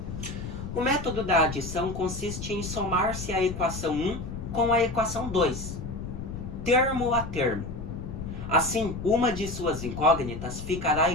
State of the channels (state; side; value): noise; left; rumble, 8 dB below the sound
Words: O método da adição consiste em somar-se a equação 1 com a equação 2, termo a termo. Assim, uma de suas incógnitas ficará